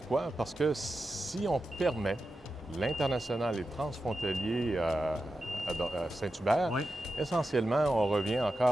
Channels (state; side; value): normal; both; correlation 0.91